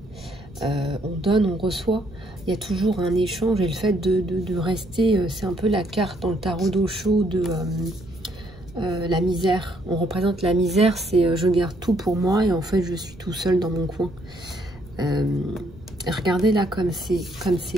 On donne, on reçoit. Il y a toujours un échange, et le fait de rester, c'est un peu la carte dans le tarot d'Osho de la misère. On représente la misère, c'est je garde tout pour moi et en fait je suis tout seul dans mon coin. Regardez là comme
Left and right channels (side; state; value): right; noise; rumble, 20 dB below the sound